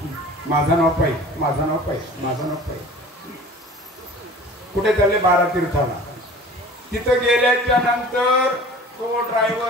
माझं नाव पाहिजे, माझं नाव पाहिजे, माझं नाव पाहिजे. कुठे चालले? 12 तीर्थाला. तिथं गेल्याच्या नंतर तो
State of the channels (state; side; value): normal; both; correlation 0.43